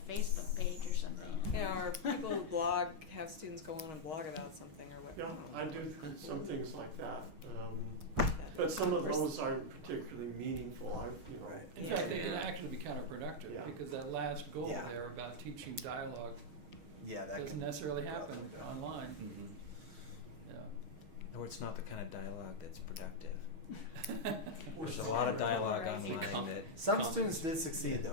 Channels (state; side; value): late; left; 6.4 ms